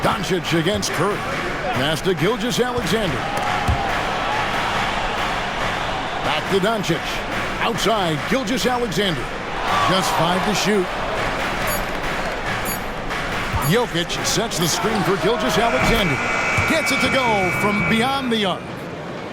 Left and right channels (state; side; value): identical; both; correlation 1.00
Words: Doncic against Curry. Pass to Gilgeous-Alexander. Back to Doncic. Outside, Gilgeous-Alexander. Just 5 to shoot. Jokic sets the screen for Gilgeous-Alexander. Gets it to go from beyond the arc.